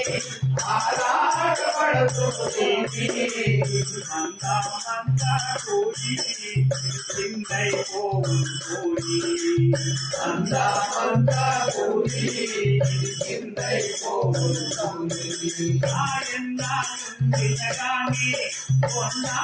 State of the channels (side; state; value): both; identical; correlation 1.00